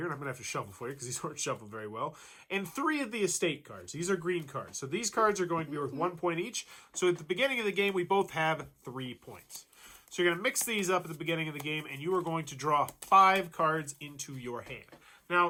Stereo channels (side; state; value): both; identical; correlation 1.00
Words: And I'm going to have to shuffle for you because these weren't shuffled very well. And 3 of the estate cards. These are green cards. So these cards are going to be worth 1 point each. So at the beginning of the game, we both have 3 points. So you're going to mix these up at the beginning of the game, and you are going to draw 5 cards into your hand.